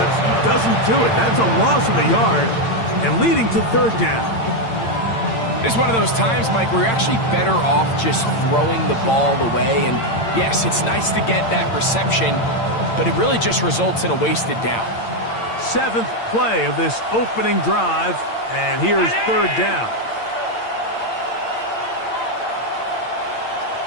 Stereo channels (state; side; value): late; right; 8.8 ms